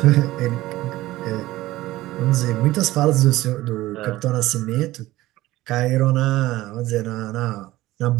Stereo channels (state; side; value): quieter; left; 16.9 dB